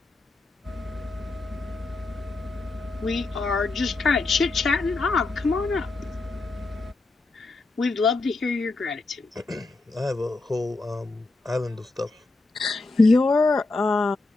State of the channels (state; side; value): quieter; right; 3.4 dB